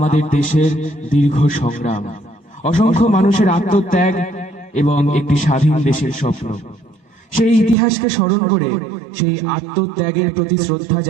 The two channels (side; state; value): left; drops out; at 7.8 s